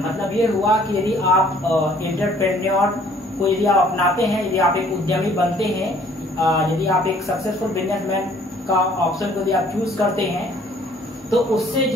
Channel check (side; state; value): both; normal; correlation 0.58